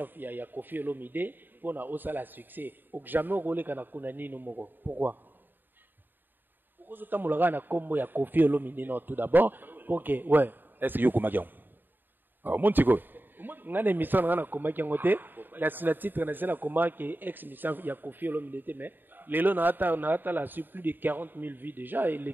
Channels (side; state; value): left; late; 0.092 ms